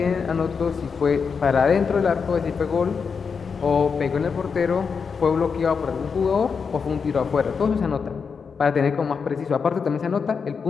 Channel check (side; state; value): right; quieter; 5.7 dB